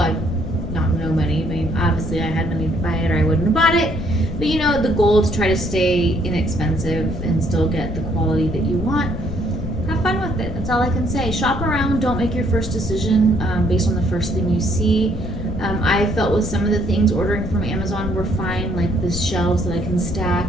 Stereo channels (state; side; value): noise; left; rumble, 8 dB below the sound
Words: not no money. I mean, obviously I had money to buy it or I wouldn't have bought it. But you know, the goal is to try to stay inexpensive and still get the quality that you want. Have fun with it. That's all I can say. Shop around. Don't make your first decision based on the first thing you see. I felt with some of the things ordering from Amazon were fine, like the shelves that I can